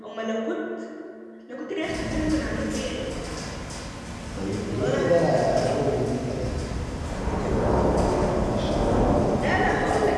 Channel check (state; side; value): identical; both; correlation 1.00